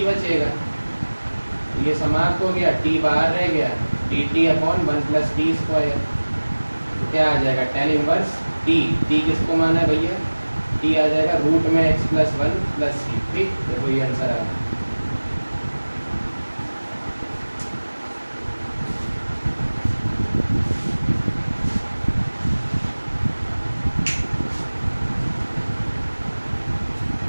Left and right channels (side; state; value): both; inverted; correlation -1.00